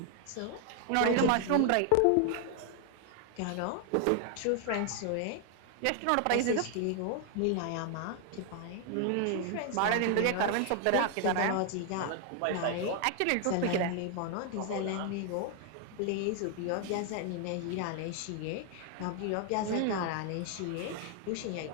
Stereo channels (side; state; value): both; different; correlation 0.00